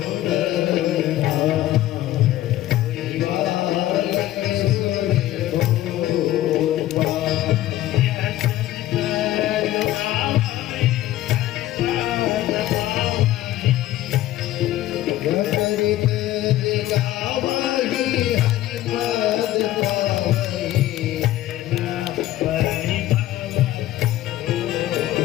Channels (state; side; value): quieter; right; 14.5 dB